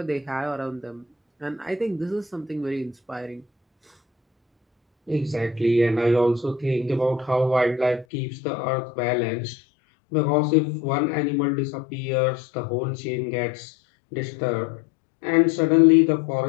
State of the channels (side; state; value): right; drops out; at 8.1 s